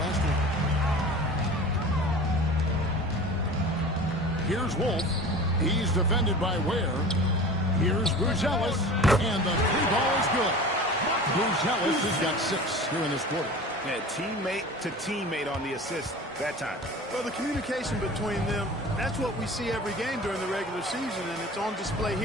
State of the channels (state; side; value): normal; both; correlation 0.38